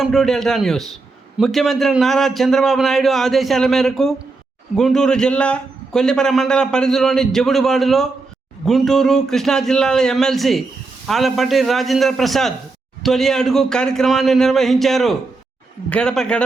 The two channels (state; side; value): quieter; left; 3.7 dB